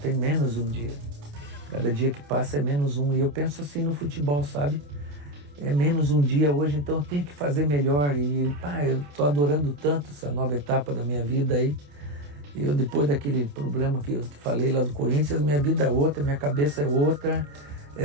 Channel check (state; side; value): late; left; 28 ms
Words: menos um dia. Cada dia que passa é menos um. E eu penso assim no futebol, sabe? É menos um dia hoje, então eu tenho que fazer melhor. E, eu tô adorando tanto essa nova etapa da minha vida aí. Eu, depois daquele problema que eu te falei lá do Corinthians, minha vida é outra, minha cabeça é outra.